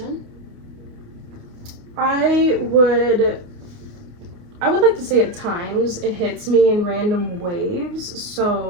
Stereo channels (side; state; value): left; late; 28 ms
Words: I would like to say at times it hits me in random waves.